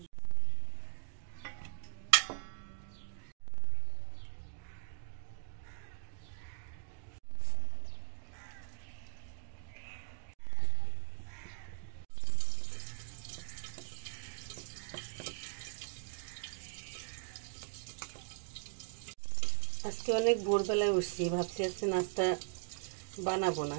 আজকে অনেক ভোরবেলায় উঠছি, ভাবছি আজকে নাস্তা বানাবো না,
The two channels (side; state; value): left; silent; digital silence